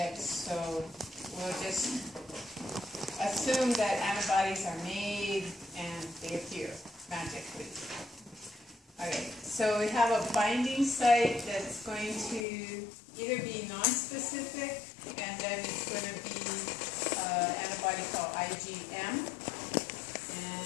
so we'll just assume that antibodies are made and they appear magically. Okay, so we have a binding site that's going to either be non-specific, and then it's going to be antibody called IgM.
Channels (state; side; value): drops out; right; at 12.5 s